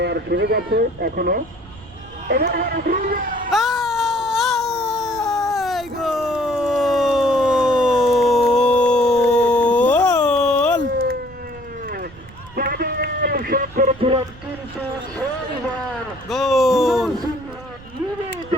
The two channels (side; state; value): right; noise; rumble, 20 dB below the sound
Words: সুযোগ আছে এখনো। করেছিলাম কিন্তু গোল